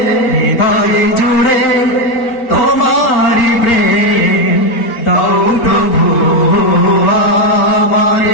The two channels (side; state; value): right; late; 4.5 ms